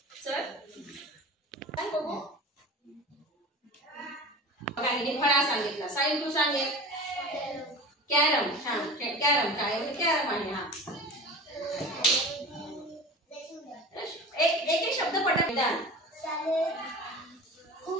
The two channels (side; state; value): both; normal; correlation 0.35